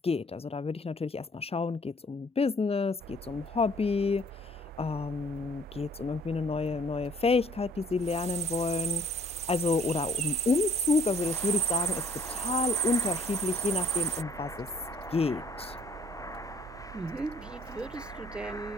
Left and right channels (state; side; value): normal; both; correlation 0.58